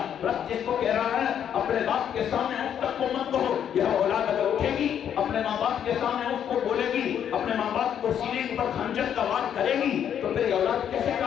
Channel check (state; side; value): quieter; right; 9.1 dB